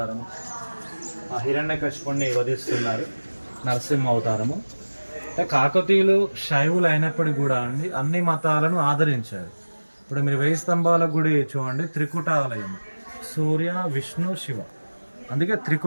ఆ హిరణ్యకశిపుణ్ణి వధిస్తున్నారు, నరసింహ అవతారము. అంటే కాకతీయులు శైవులు అయినప్పటికీ కూడా అండి అన్ని మతాలను ఆదరించారు. ఇప్పుడు మీరు 1000 స్తంభాల గుడి చూడండి, త్రికుటాలయం, సూర్య విష్ణు శివ, అందుకే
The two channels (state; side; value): inverted; both; correlation -1.00